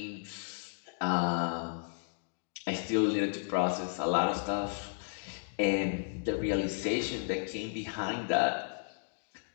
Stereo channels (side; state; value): right; silent; digital silence